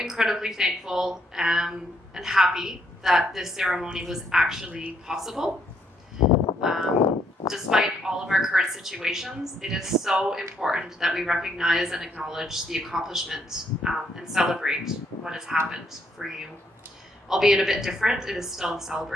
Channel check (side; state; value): both; normal; correlation 0.72